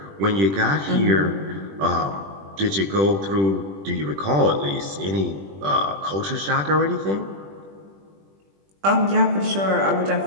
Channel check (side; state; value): left; late; 20 ms